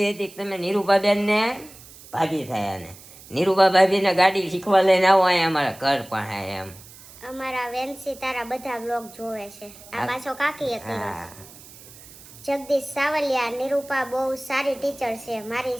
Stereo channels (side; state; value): right; noise; hiss, 20 dB below the sound